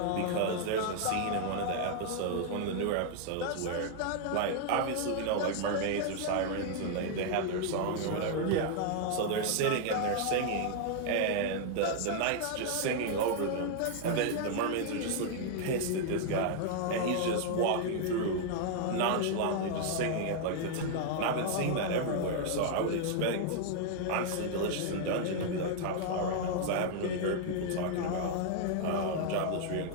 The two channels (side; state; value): both; different; correlation 0.00